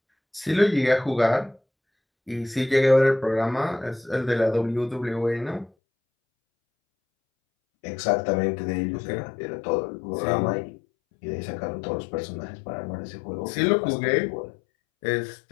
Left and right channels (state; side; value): drops out; right; at 5.7 s